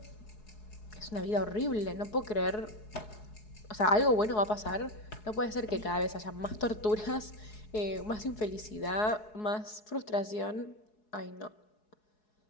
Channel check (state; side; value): late; right; 4.7 ms